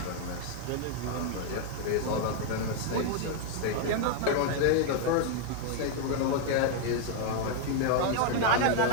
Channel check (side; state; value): both; different; correlation 0.00